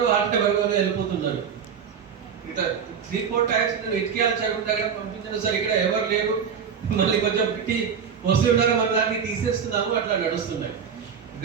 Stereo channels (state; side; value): quieter; left; 7.1 dB